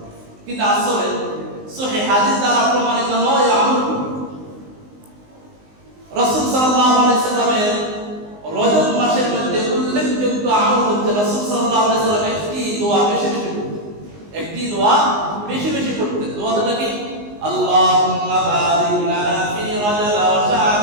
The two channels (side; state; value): left; late; 19 ms